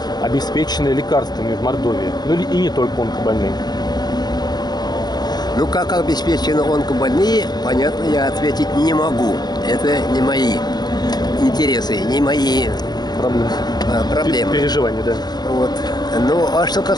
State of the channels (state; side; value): late; right; 0.20 ms